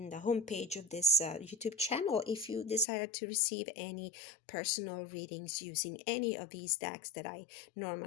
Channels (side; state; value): right; drops out; at 2.9 s